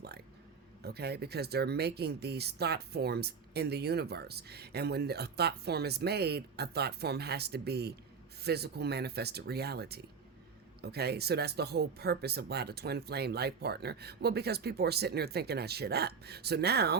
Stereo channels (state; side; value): quieter; left; 5.7 dB